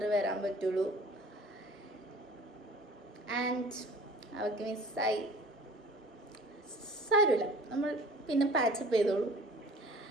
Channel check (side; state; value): both; normal; correlation 0.46